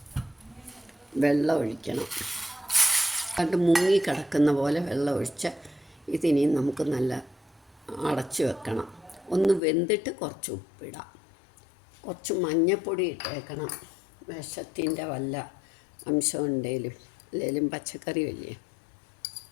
വെള്ളം ഒഴിക്കണം. കണ്ട് മുങ്ങിക്കിടക്കുന്ന പോലെ വെള്ളം ഒഴിച്ച് ഇതിനി നമുക്ക് നല്ല അടച്ചു വെക്കണം. ഒന്ന് വെന്തിട്ട് കുറച്ച് ഉപ്പിടാം, കുറച്ച് മഞ്ഞൾപ്പൊടി ഇട്ടേക്കണം. വിഷത്തിൻ്റെ വല്ല അംശം ഉണ്ടെങ്കിലും അല്ലെങ്കിലും പച്ചക്കറി അല്ലേ.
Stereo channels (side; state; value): right; drops out; at 9.6 s